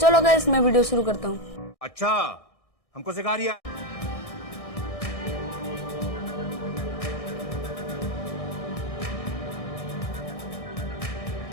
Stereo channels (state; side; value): late; right; 1.6 ms